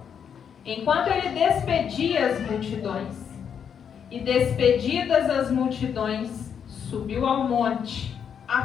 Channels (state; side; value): quieter; right; 7.7 dB